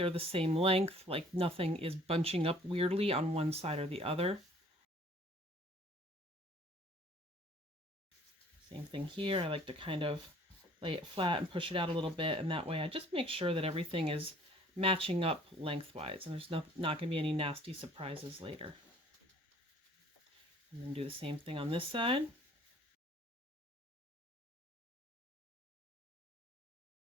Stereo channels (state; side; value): normal; both; correlation 0.55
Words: the same length, like nothing is bunching up weirdly on one side or the other. Same thing here. I like to kind of lay it flat and push it out a little bit, and that way I just make sure that everything is matching up lengthwise and there's not going to be any nasty surprises later. And then do the same thing on this side.